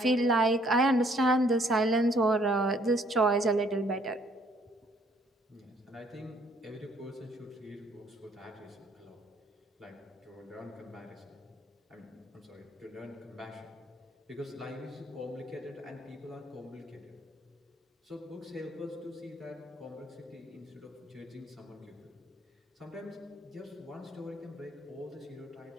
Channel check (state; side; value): normal; both; correlation 0.64